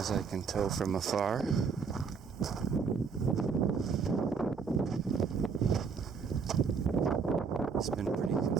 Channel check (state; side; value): quieter; left; 5.5 dB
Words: I can tell from afar. It's been pretty